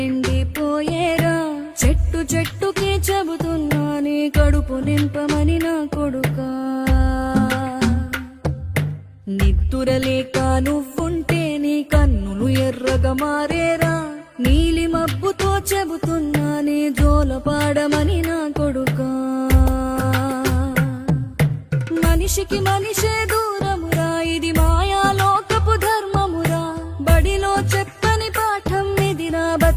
చెట్టు చెట్టుకే చెబుతున్నా నీ కడుపు నింపమని నా కొడుకా. నిద్దురలేక నువ్వుంటే నీ కన్నులు ఎర్రగా మారేరా. నీలి మబ్బుతో చెబుతున్నా నీ జోలపాడమని నా కొడుకా. మనిషికి మనిషే దూరమురా, ఇది మాయాలోకపు ధర్మమురా. బడిలో చెప్పని పాఠం ఇదిరా,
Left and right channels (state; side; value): identical; both; correlation 1.00